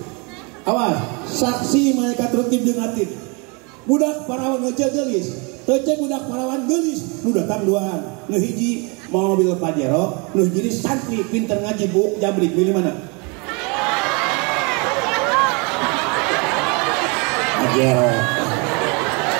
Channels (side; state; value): left; quieter; 31.4 dB